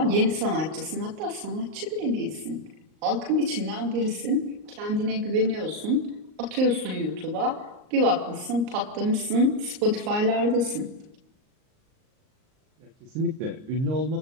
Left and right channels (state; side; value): late; left; 38 ms